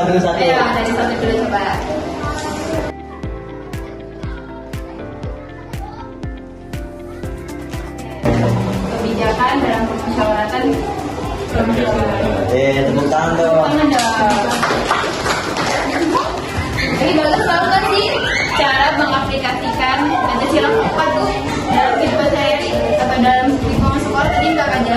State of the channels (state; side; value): identical; both; correlation 1.00